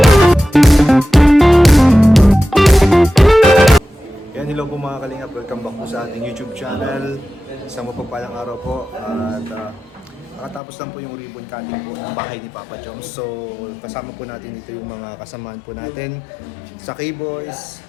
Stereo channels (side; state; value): right; drops out; at 10.6 s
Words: Yan, hello po mga kalingap. Welcome back po sa ating YouTube channel. Isang mapagpalang araw po. At nakatapos lang po yung ribbon cutting po ng bahay ni Papa Joms. So, kasama po natin dito yung mga kasamaan po natin sa K-Boys.